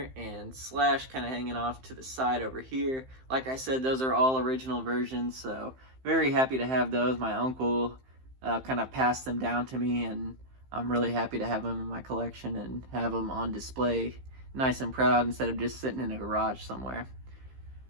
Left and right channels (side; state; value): left; late; 15 ms